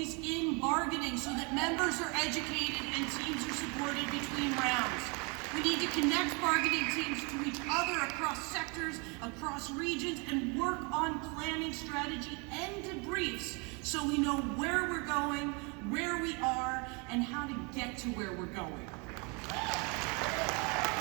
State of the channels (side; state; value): left; quieter; 31.6 dB